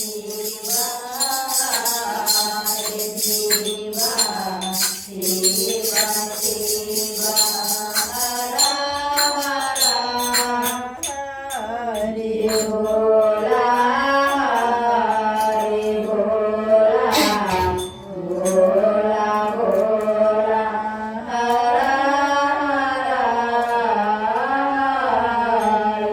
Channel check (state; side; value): identical; both; correlation 1.00